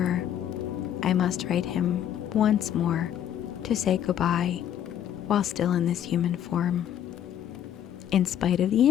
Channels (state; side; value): quieter; right; 10.2 dB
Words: I must write him once more to say goodbye while still in this human form. In spite of the